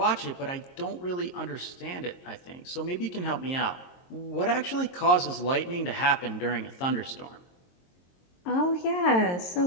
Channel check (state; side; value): late; right; 22 ms